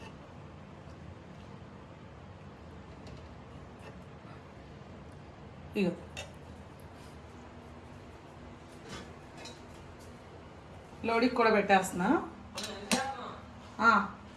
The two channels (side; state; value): both; identical; correlation 1.00